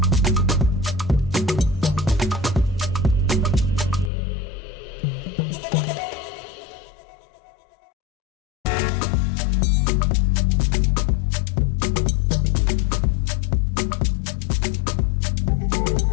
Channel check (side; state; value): right; drops out; at 4.1 s